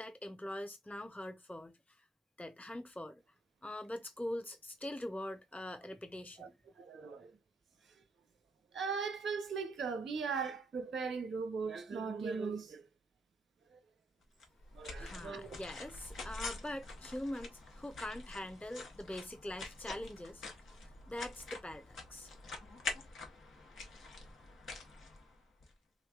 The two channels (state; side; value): normal; both; correlation 0.73